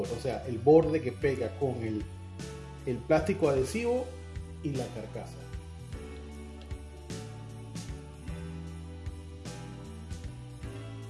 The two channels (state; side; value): identical; both; correlation 1.00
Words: o sea, el borde que pega con el plástico adhesivo y la carcasa.